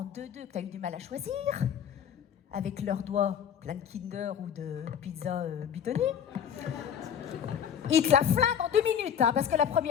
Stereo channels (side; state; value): right; quieter; 8.5 dB